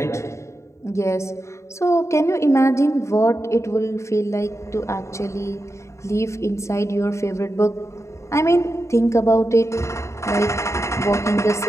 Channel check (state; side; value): late; right; 0.14 ms